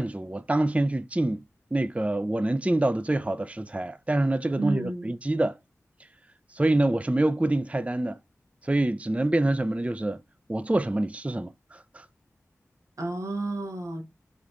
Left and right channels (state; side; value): normal; both; correlation 0.97